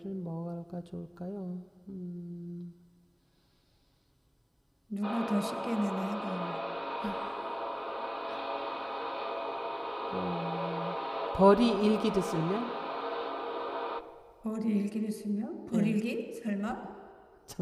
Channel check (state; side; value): identical; both; correlation 1.00